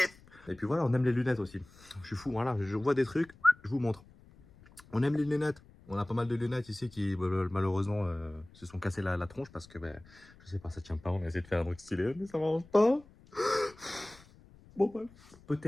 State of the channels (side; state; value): left; noise; rumble, 25 dB below the sound